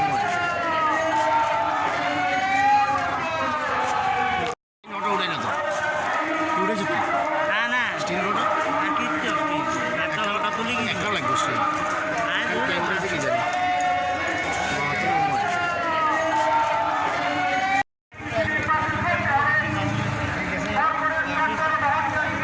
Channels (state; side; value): identical; both; correlation 1.00